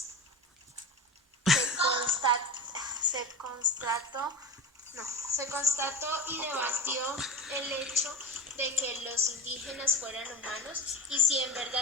y debatió el hecho de que los indígenas fueran humanos y si en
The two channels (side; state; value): both; normal; correlation 0.28